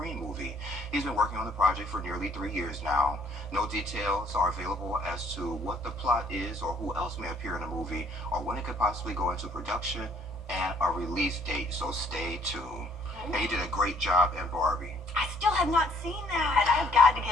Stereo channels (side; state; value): both; normal; correlation 0.62